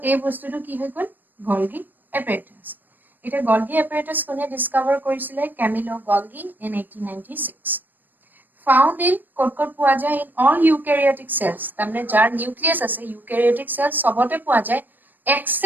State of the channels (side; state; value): left; late; 0.090 ms